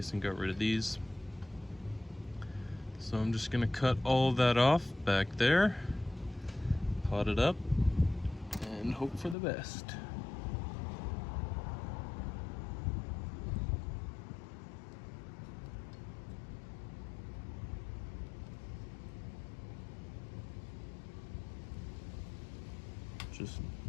and got rid of these. So I'm just gonna cut all of that off back there, pot it up, and hope for the best.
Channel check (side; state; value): right; drops out; at 9.3 s